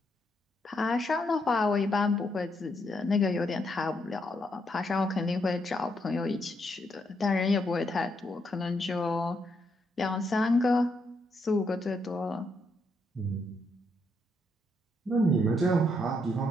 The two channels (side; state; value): both; normal; correlation 0.77